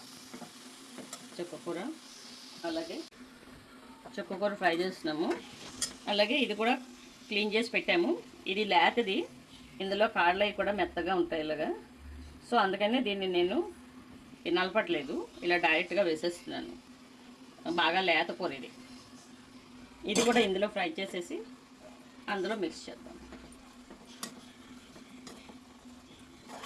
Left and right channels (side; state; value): both; identical; correlation 1.00